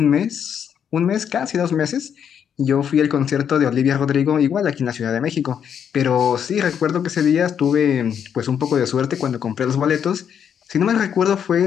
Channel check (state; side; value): quieter; right; 8.2 dB